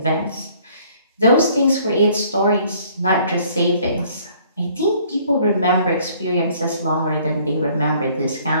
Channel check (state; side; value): inverted; both; correlation -0.59